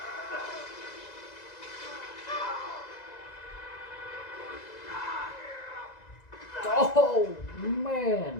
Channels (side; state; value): right; late; 2.0 ms